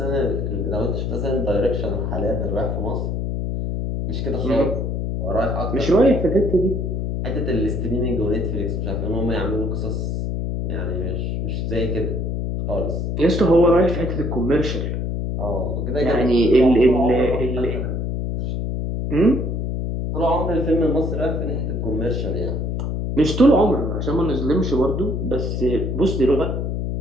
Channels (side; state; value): left; noise; hum, 1 dB below the sound